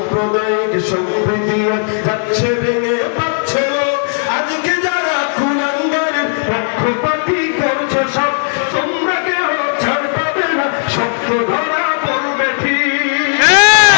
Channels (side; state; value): right; silent; digital silence